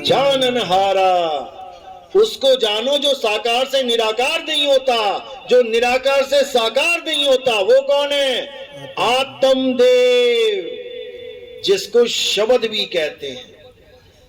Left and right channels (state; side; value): identical; both; correlation 1.00